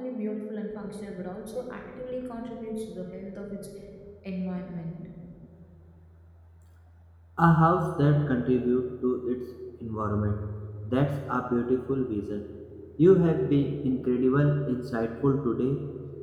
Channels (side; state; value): both; identical; correlation 1.00